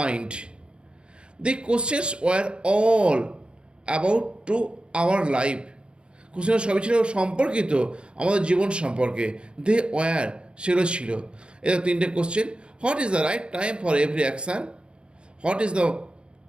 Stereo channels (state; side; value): late; left; 0.055 ms